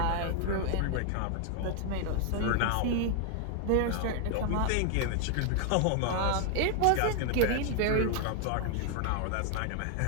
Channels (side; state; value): both; different; correlation 0.00